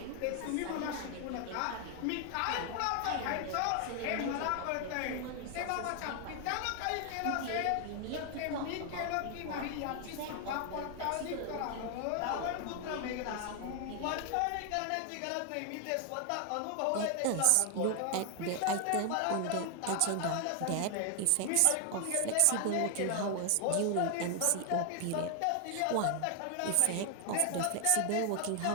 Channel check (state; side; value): different; both; correlation 0.00